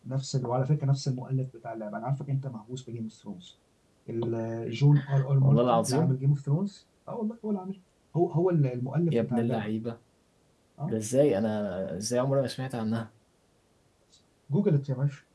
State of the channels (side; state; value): both; identical; correlation 1.00